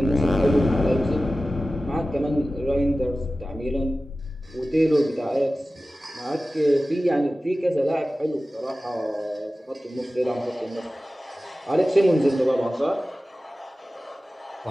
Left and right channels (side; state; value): both; normal; correlation 0.96